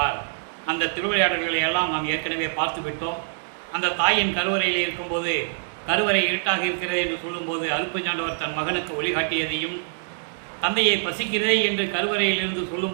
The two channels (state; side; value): silent; left; digital silence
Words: அந்த திருவிளையாடல்களை எல்லாம் நாம் ஏற்கனவே பார்த்து விட்டோம். அந்த தாயின் கருவறையில் இருக்கும்போது கருவறை இருட்டாக இருக்கிறது என்று சொல்லும்போது அருப்பெருஞ்சாண்டவர் தன் மகனுக்கு ஒளிகாட்டியதையும், தந்தையை பசிக்கிறதே என்று கருவறையில் இருந்து